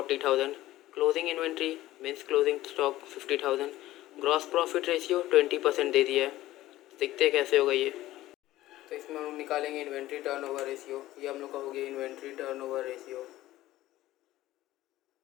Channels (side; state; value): right; quieter; 15.7 dB